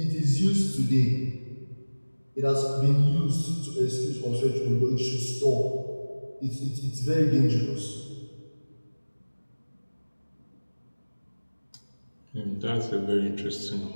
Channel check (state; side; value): inverted; both; correlation -1.00